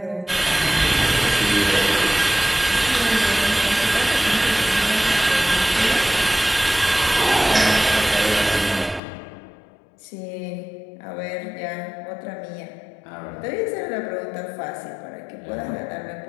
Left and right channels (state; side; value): drops out; right; at 9.0 s